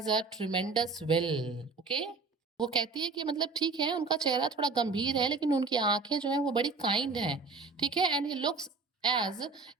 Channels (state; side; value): quieter; left; 4.2 dB